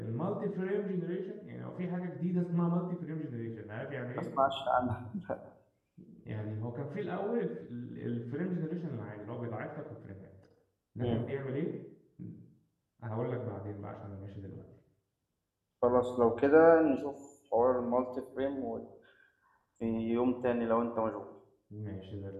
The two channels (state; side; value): identical; both; correlation 1.00